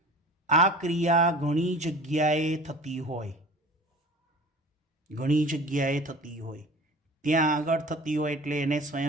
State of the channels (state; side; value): normal; both; correlation 0.41